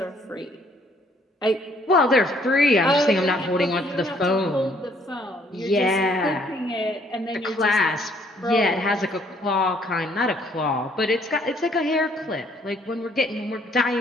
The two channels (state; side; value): normal; both; correlation 0.64